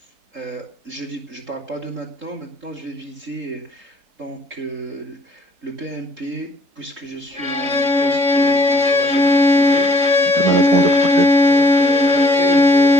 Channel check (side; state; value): left; late; 3.5 ms